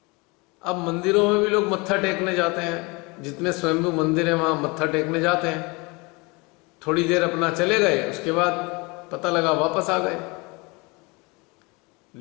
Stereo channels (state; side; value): quieter; right; 27.0 dB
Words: अब मंदिरों में भी लोग मत्था टेकने जाते हैं, जितने स्वयंभू मंदिर है वहां मत्था टेकने जाते हैं, थोड़ी देर अपना चले गए, उसके बाद पता लगा वापस आ गए।